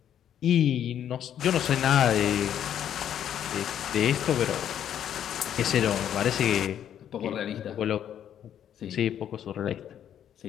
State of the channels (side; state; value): right; quieter; 9.9 dB